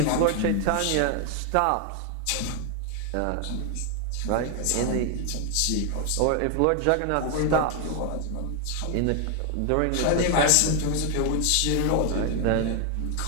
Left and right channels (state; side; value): different; both; correlation 0.01